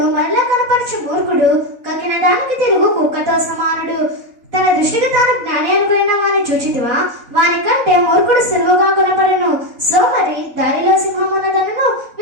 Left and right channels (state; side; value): late; left; 4.0 ms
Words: మరలా కనపరచు మూర్ఖుడు కక్కిన దానికి తిరుగు కుక్కతో సమానుడు. తన దృష్టికి తాను జ్ఞాని అనుకున్న వాని చూచితివా? వాని కంటే మూర్ఖుడు సులువుగా కొనపడను. సోమరి దారిలో సింహమున్నదనను